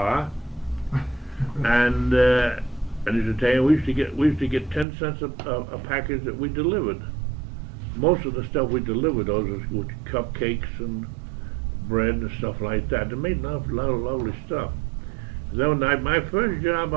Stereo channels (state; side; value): drops out; left; at 4.9 s